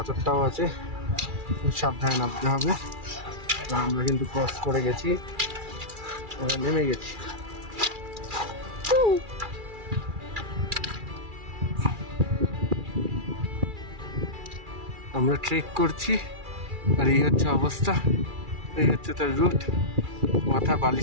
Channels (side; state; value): left; late; 2.3 ms